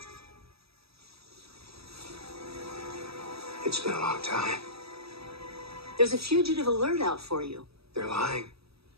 It's been a long time. There's a fugitive alert out for you. They're lying.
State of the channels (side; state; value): left; late; 0.78 ms